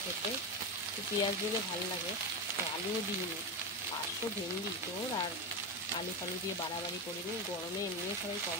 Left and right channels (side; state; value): both; normal; correlation 0.14